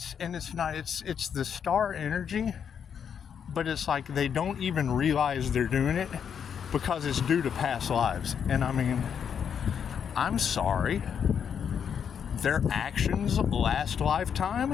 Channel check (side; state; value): right; quieter; 7.7 dB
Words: the star energy, but it's like they don't even realize they're doing it because it's due to past lives. And I mean, I'm sorry. Their actions last